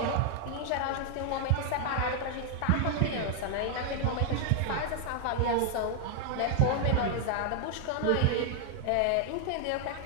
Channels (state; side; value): different; both; correlation 0.00